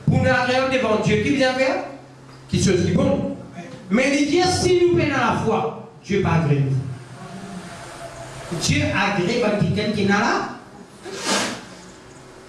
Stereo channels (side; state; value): both; identical; correlation 1.00